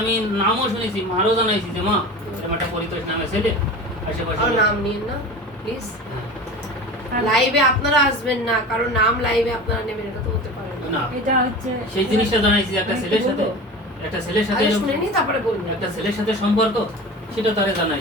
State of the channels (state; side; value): normal; both; correlation 0.33